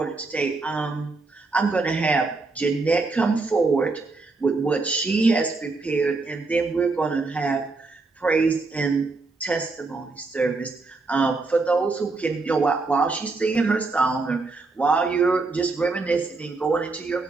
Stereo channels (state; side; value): quieter; left; 3.7 dB